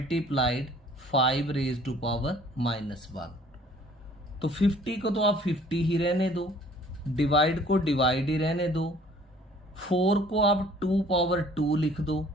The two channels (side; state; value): both; normal; correlation 0.54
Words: 5 raise to power -1। तो 50 को तो आप 50 ही रहने दो, डिवाइड को डिवाइड ही रहने दो, 4 को आप 2 पावर 2 लिख दो,